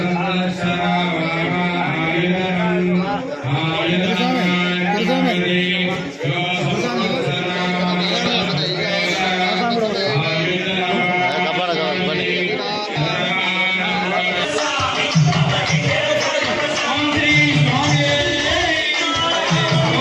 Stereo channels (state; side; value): identical; both; correlation 1.00